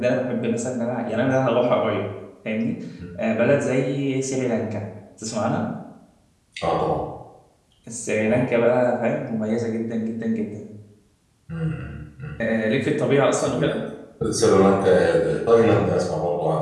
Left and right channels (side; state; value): both; identical; correlation 1.00